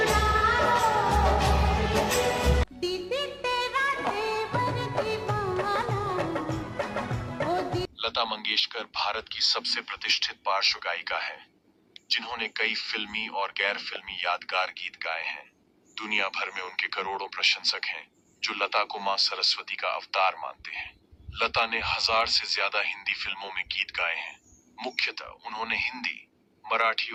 दीदी तेरा तेवर दीवाना, ओ लता मंगेशकर भारत की सबसे प्रतिष्ठित पार्श्व गायिका है, जिन्होंने कई फिल्मी और गैर फिल्मी यादगार गीत गाए हैं। दुनिया भर में उनके करोड़ों प्रशंसक हैं, जो लता को मां सरस्वती का अवतार मानते हैं। लता ने 1000 से ज्यादा हिंदी फिल्मों में गीत गाए हैं। मुख्यतः उन्होंने हिंदी, मराठी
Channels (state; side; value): identical; both; correlation 1.00